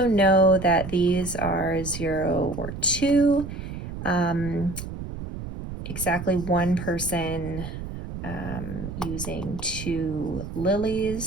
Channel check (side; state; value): right; noise; rumble, 9 dB below the sound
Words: know that these are 0 or 2. Exactly 1 person using 2